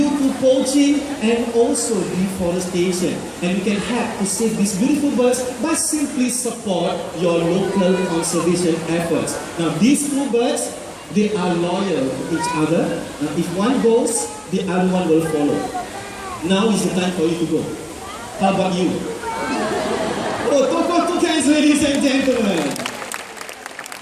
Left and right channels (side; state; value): both; identical; correlation 1.00